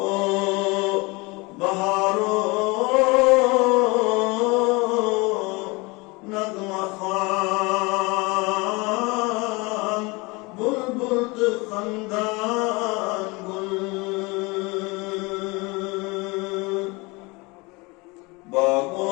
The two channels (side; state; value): right; quieter; 26.0 dB